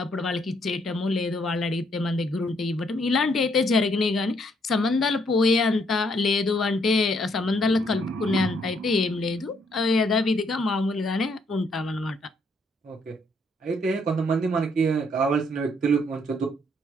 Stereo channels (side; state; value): both; normal; correlation 0.70